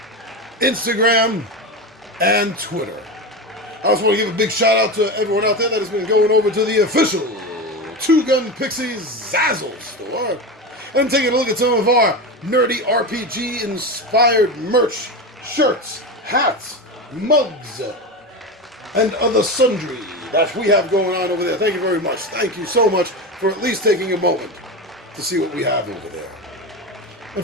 Instagram, and Twitter. I also want to give a big shout out to everyone out there that has been going over to the official Two Gun Pixies Zazzle store and taking a look at some of our nerdy RPG inspired merch, shirts, hats, mugs, and other sundry that we have going on over there. Thank you very much. Thank you so much for at least taking a moment to see what we have over there. And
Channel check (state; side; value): normal; both; correlation 0.21